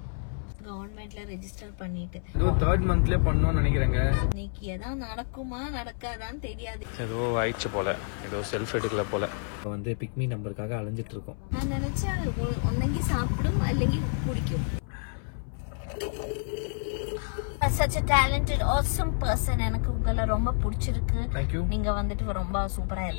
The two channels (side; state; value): right; silent; 59 dB below the other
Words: கவர்மெண்ட்ல ரெஜிஸ்டர் பண்ணிட்டு ஏதோ 3rd மந்த்லயே பண்ணணும்னு நினைக்கிறேங்க. இன்னைக்கு ஏதாவது நடக்குமா நடக்காதான்னு தெரியாது. ஏதோ ஆயிடுச்சு போல, ஏதோ செல்ஃப் எடுக்கல போல. வந்து பிக்மி நம்பருக்காக அலைஞ்சிட்டு இருக்கோம். நான் நினைச்சேன் ஒன்னங்கி சாப்பிடும் அல்லங்கி குடிக்கும். such a talented awesome person. எனக்கு உங்களை ரொம்ப பிடிச்சிருக்கு. Thank you. நீங்க வந்துட்டு ரொம்ப சூப்பரா